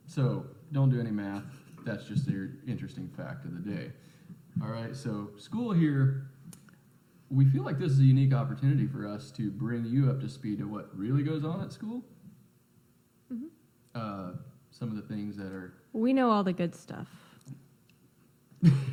So don't do any math. That's just an interesting fact of the day. All right, so school here, we feel like this is a unique opportunity for us to bring you up to speed to what really goes on at school. Mm-hmm. Some of the things that are... We know all the good stuff.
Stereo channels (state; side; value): identical; both; correlation 1.00